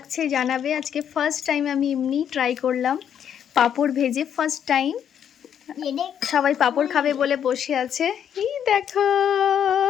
জানাবে। আজকে ফার্স্ট টাইম আমি এমনি ট্রাই করলাম পাঁপড় ভেজে, ফার্স্ট টাইম। সবাই পাঁপড় খাবে বলে বসে আছে। এই দেখো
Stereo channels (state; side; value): quieter; right; 9.0 dB